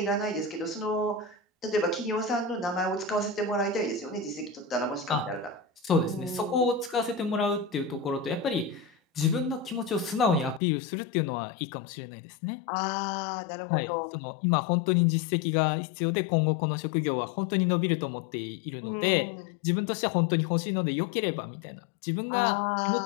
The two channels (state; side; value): drops out; right; at 10.6 s